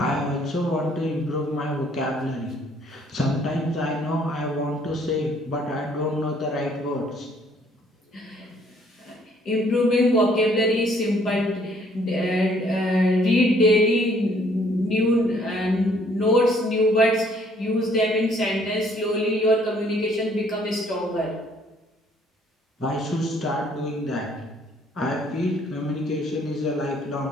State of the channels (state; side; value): normal; both; correlation 0.63